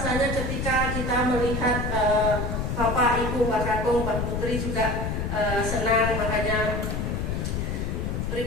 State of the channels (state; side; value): noise; left; rumble, 1 dB below the sound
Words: ketika kita melihat Bapak, Ibu, Mbak Kakung, Mbak Putri juga senang, makanya